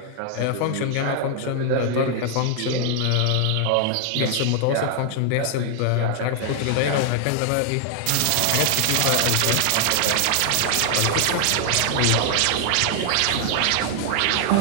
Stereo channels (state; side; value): different; both; correlation 0.00